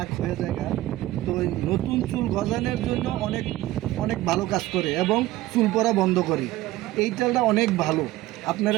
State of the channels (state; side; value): quieter; left; 16.5 dB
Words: হয়ে যায় গা। তো এই নতুন চুল গজানোর জন্য অনেক অনেক ভালো কাজ করে এবং চুল পড়া বন্ধ করে। এই তেলটা অনেক ভালো,